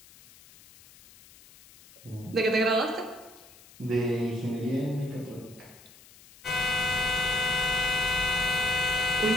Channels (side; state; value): left; noise; hiss, 23 dB below the sound